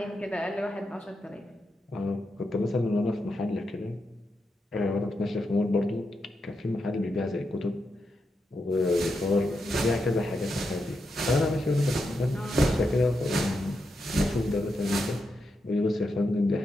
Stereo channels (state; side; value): normal; both; correlation 0.85